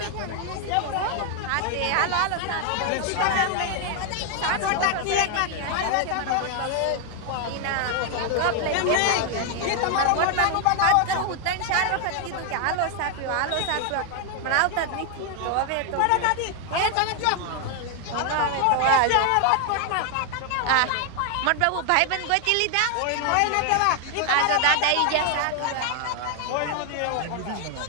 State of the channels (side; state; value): both; different; correlation 0.00